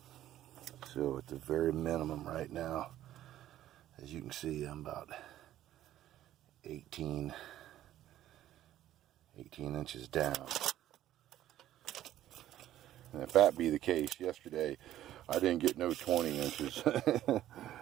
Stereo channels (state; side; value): quieter; left; 12.9 dB